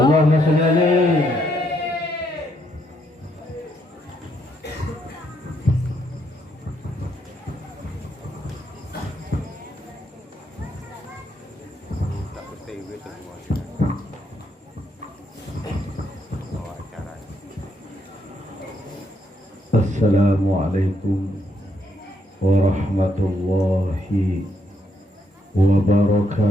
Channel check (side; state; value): both; normal; correlation 0.75